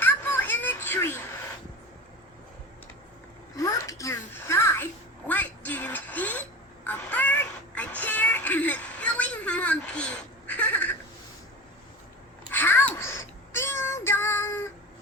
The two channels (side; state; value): both; normal; correlation 0.31